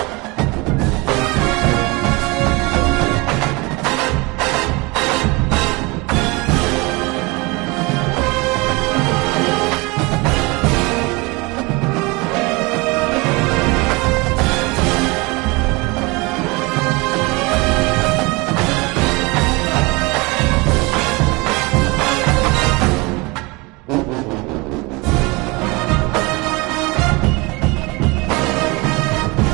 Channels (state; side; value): quieter; left; 25.8 dB